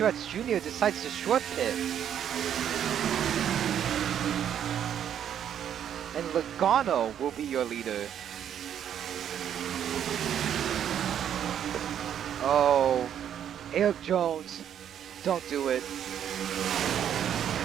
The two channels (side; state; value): left; quieter; 9.5 dB